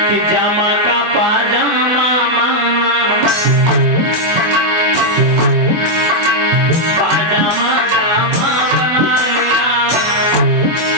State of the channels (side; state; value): left; late; 24 ms